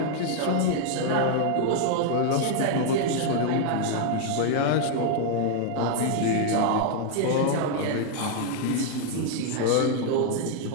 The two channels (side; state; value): both; different; correlation 0.00